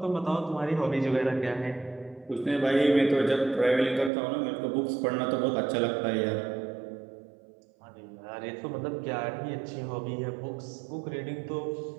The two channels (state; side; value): drops out; left; at 4.1 s